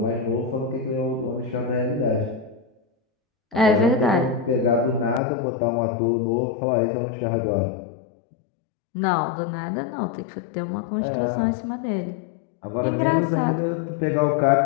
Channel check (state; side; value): drops out; right; at 5.2 s